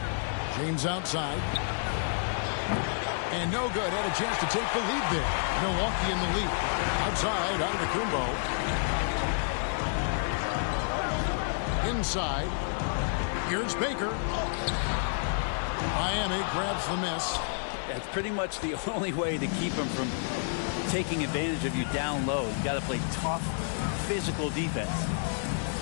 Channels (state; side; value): silent; right; 58 dB below the other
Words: James outside. And no good. Had a chance to take the lead there. Milwaukee in the lead. Outside, Antetokounmpo. Inside. Here's Baker. Miami grabs the miss. That's pretty much the only way to keep him from taking advantage of you down low. You got to play tough, physical defense.